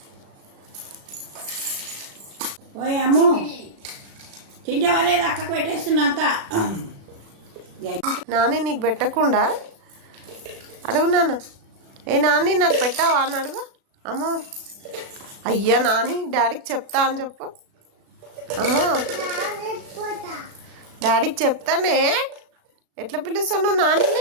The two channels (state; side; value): late; left; 36 ms